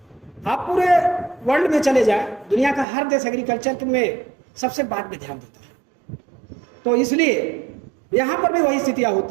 आप पूरे वर्ल्ड में चले जाए, दुनिया का हर देश एग्रीकल्चर में सबसे बाद में ध्यान देता है। तो इसलिए यहाँ पर भी वही स्थितियाँ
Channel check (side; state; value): left; drops out; at 2.9 s